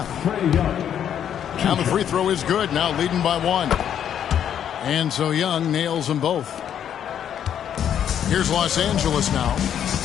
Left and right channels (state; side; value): quieter; right; 9.4 dB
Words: Now the free throw is good. Now leading by 1. And so Young nails them both. Here's Los Angeles now.